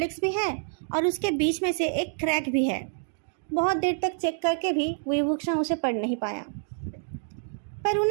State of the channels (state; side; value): silent; left; digital silence